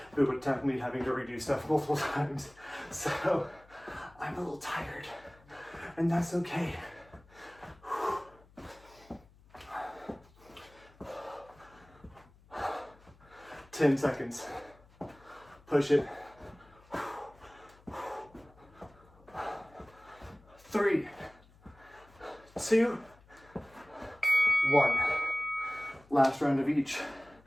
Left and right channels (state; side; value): noise; left; hum, 26 dB below the sound